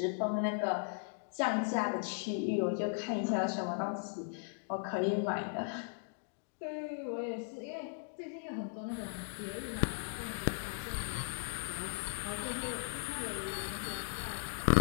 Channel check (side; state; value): right; silent; digital silence